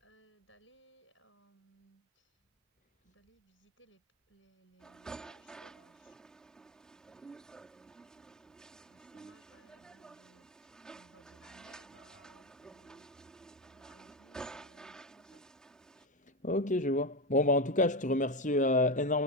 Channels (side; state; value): both; normal; correlation 0.14